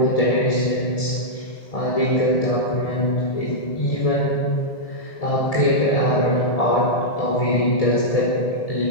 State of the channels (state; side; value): late; right; 1.6 ms